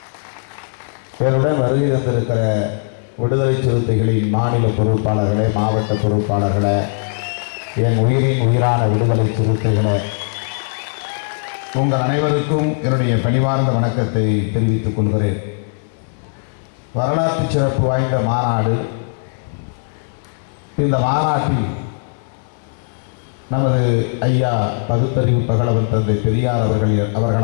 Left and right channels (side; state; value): right; silent; 65 dB below the other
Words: என்னுடன் வருகை தந்திருக்கிற விடுதலை சிறுத்தைகளின் மாநில பொறுப்பாளர்களே, மாவட்ட பொறுப்பாளர்களே, என் உயிரின் உயிரான விடுதலை சிறுத்தைகளே, உங்கள் அனைவருக்கும் என்னுடைய பணிவார்ந்த வணக்கத்தை தெரிவித்துக் கொள்கிறேன். வரலாற்று சிறப்பு வாய்ந்த மாநாடு. இந்த மாநாட்டில் நமது ஐயா பகுத்தறிவு பகலவன் தந்தை பெரியார்